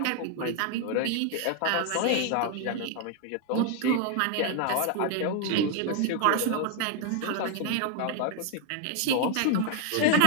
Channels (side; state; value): both; different; correlation 0.00